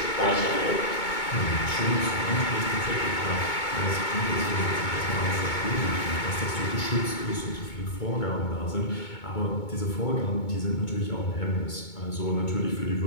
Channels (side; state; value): right; late; 2.2 ms